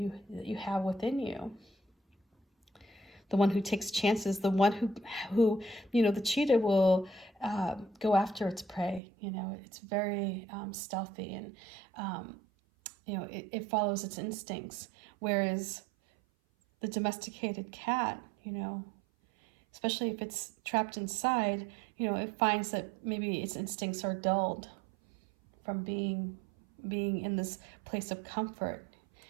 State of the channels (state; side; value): drops out; left; at 9.0 s